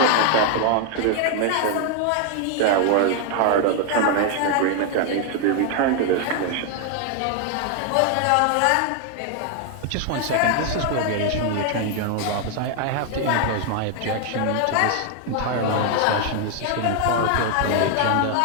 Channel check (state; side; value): different; both; correlation 0.00